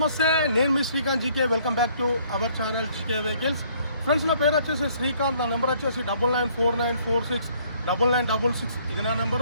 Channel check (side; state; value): both; inverted; correlation -0.62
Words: నేను మీ Srikanth GK. Welcome back to our channel GK vehicles. Friends, నా పేరు వచ్చేసి శ్రీకాంత్. నా నెంబర్ వచ్చేసి 9949469966. ఇది నా